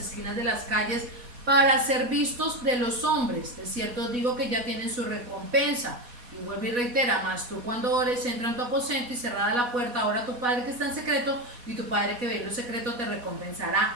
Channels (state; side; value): late; left; 4.1 ms